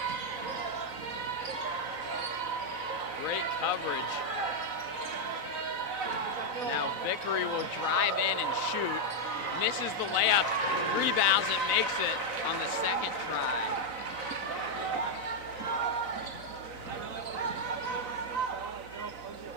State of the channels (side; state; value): left; late; 4.0 ms